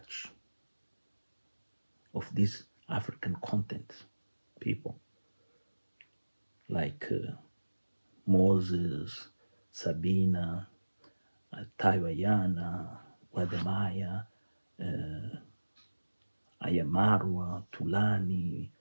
of these African content people like Moses, Sabina, Taiwayana, Wademaya, Ayamarwa, Tulani,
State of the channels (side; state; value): both; inverted; correlation -1.00